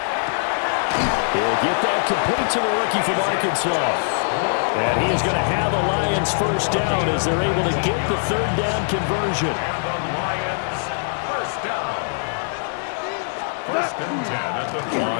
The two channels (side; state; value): right; silent; digital silence